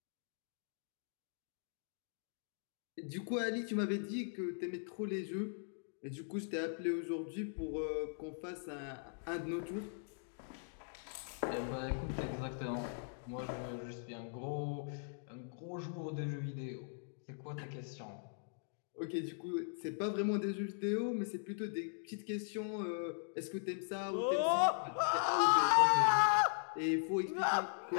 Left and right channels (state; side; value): silent; right; digital silence